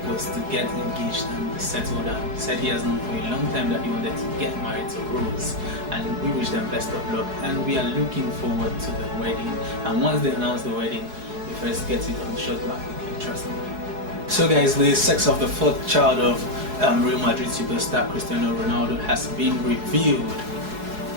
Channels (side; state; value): left; late; 4.7 ms